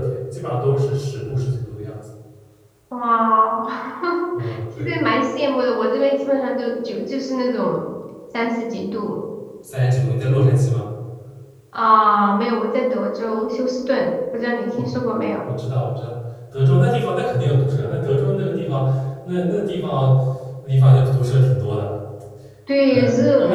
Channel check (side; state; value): both; identical; correlation 1.00